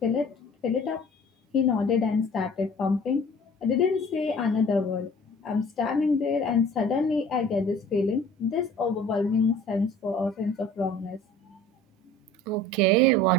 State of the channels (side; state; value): both; normal; correlation 0.47